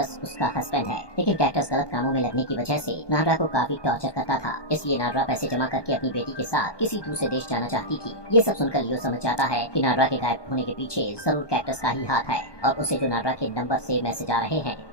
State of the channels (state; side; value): late; right; 1.2 ms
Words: उसका हस्बैंड है। लेकिन कैक्टस गलत कामों में लगने की वजह से नादरा को काफी टॉर्चर करता था, इसलिए नादरा पैसे जमा करके अपनी बेटी के साथ किसी दूसरे देश जाना चाहती थी। ये सब सुनकर लियो समझ जाता है कि नादरा के गायब होने के पीछे जरूर कैक्टस का ही हाथ है और उसे जो नादरा के नंबर से मैसेज आ रहे हैं